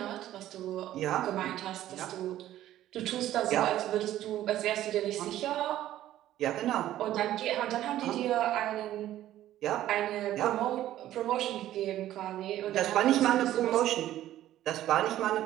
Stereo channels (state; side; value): quieter; left; 13.3 dB